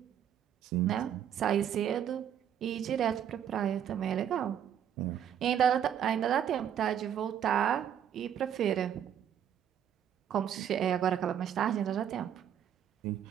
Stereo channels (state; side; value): quieter; left; 9.4 dB